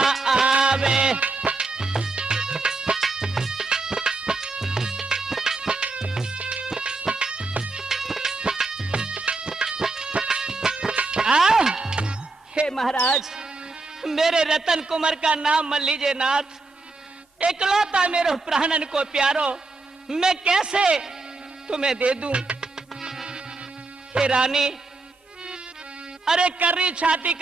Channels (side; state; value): left; quieter; 3.5 dB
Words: आवे। हे महाराज, मेरे रतन कुमार का नाम मत लीजिए नाथ। इकलौता मेरे प्राणन को प्यारो, मैं कैसे तुम्हें दे दूं? हे रानी, अरे कर्री छाती